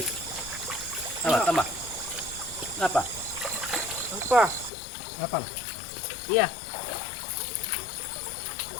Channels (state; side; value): drops out; right; at 4.7 s